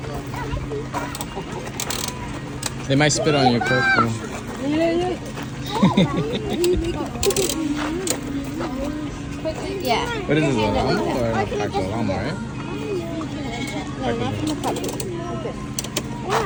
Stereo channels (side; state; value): both; identical; correlation 1.00